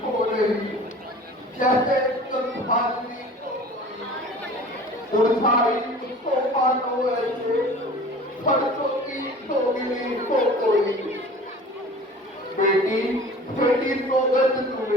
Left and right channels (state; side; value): normal; both; correlation 0.42